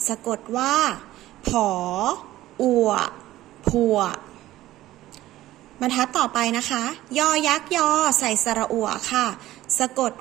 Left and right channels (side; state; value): left; quieter; 15.3 dB